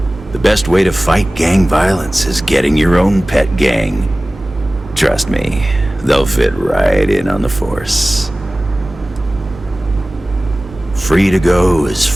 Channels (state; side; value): normal; both; correlation 0.97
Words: The best way to fight gang violence is getting your own pet gang. Trust me, they'll fit right in on the force. Free to go as